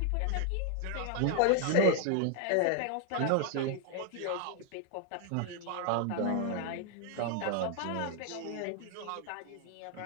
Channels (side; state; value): both; different; correlation 0.00